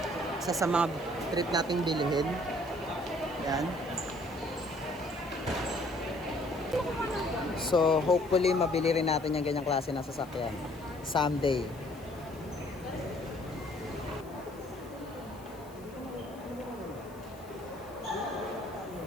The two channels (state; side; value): noise; left; hiss, 24 dB below the sound